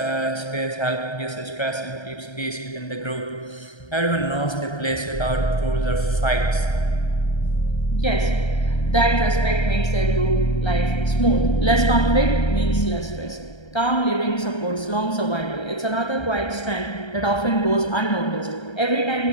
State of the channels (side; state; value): right; late; 1.3 ms